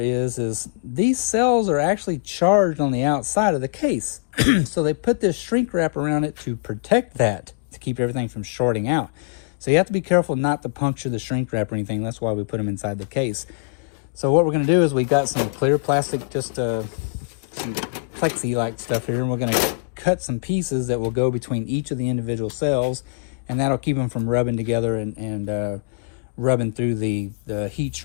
these cells are actually charged on the outside of the case. So they put this shrink wrap around it to protect that, to keep everything from shorting out. So you have to be careful not to puncture the shrink wrap or anything. That's why we put them inside the case. So what we're going to do is we got some clear plastic, just some plexi-like stuff here, and we're going to cut some pieces that will go between each of the individual cells, and that'll keep them from rubbing together and rubbing through the heat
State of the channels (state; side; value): quieter; right; 37.9 dB